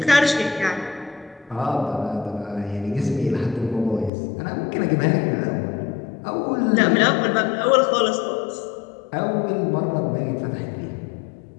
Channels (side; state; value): right; drops out; at 4.1 s